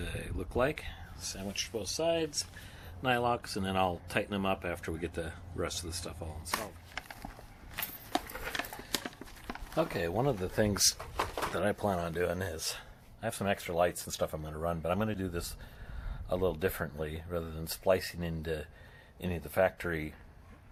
look like. Sandwiched both sides, nylocks, and then I'll tighten them up after we get the rest of the stuff all installed. Okay, one of the things that I plan on doing is, I have some extra lights and stuff I'm going to run, but I'm going to do this a little differently rather than splicing into any of the factory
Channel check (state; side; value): identical; both; correlation 1.00